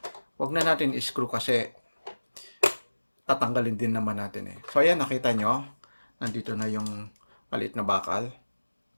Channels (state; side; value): inverted; both; correlation -1.00